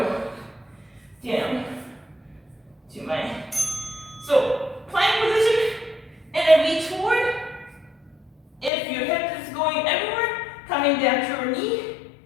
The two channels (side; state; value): right; drops out; at 8.7 s